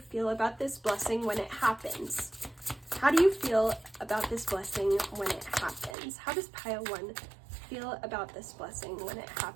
about this blessing when it happens? How do you feel about this blessing when it happens? How does pile 1 feel about this blessing when it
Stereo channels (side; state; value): left; drops out; at 6.0 s